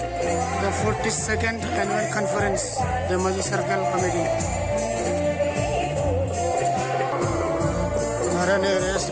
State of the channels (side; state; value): both; identical; correlation 1.00